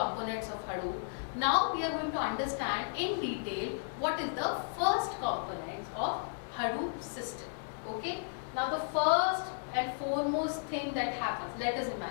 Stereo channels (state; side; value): silent; right; digital silence